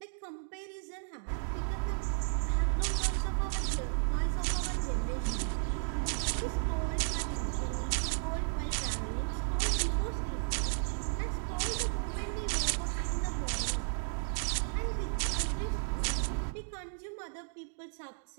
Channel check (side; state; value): left; silent; digital silence